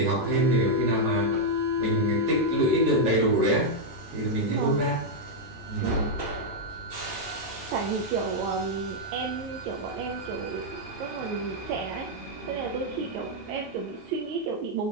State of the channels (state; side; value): normal; both; correlation -0.02